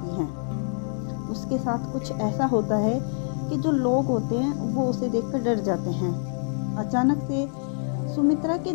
है। उसके साथ कुछ ऐसा होता है कि जो लोग होते हैं वो उसे देखकर डर जाते हैं। अचानक से सुमित्रा के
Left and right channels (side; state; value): right; silent; digital silence